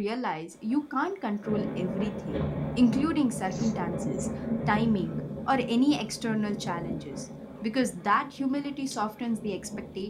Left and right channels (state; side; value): identical; both; correlation 1.00